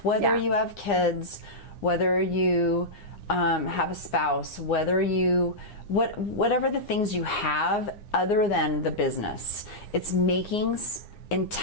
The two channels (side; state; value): right; late; 9.8 ms